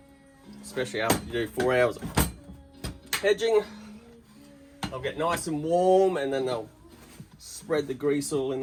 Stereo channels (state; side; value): identical; both; correlation 1.00